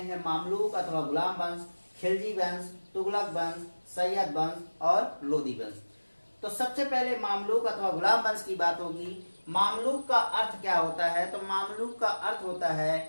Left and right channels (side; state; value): both; inverted; correlation -1.00